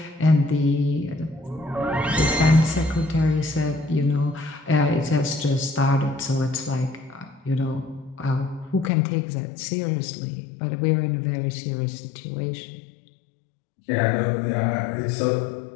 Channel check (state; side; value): drops out; right; at 8.9 s